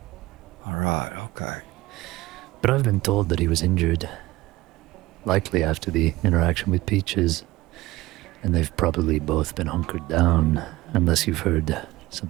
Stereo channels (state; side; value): quieter; left; 18.7 dB